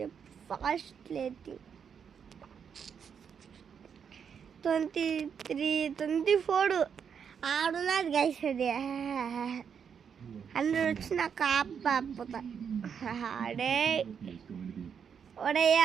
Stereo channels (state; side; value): quieter; left; 7.2 dB